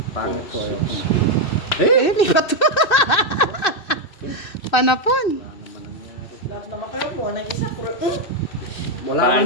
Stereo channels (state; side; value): late; right; 2.6 ms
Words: Pangit ko. Di ba to? Panapon. Lahat naman kayo mo, ng isa, Wala